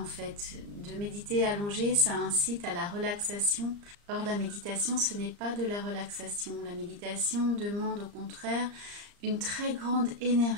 fait. De méditer allongé, ça incite à la relaxation. Or, la méditation, ce n'est pas de la relaxation. La méditation demande au contraire une très grande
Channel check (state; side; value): late; left; 34 ms